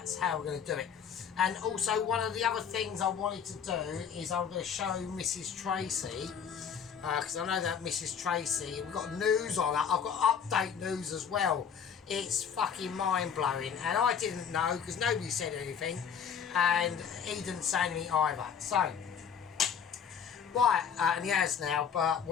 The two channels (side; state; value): right; quieter; 7.4 dB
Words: how we're going to do it. And also, one of the other things I wanted to do is I'm going to show Mrs. Tracy, because I know that Mrs. Tracy, we've got news on that. I've got update news as well. It's fucking mind-blowing, and I didn't know because nobody said anything, and he didn't say anything either. So, right, and he has now, but